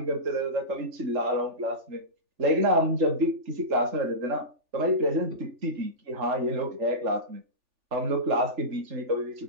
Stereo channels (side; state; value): left; late; 3.4 ms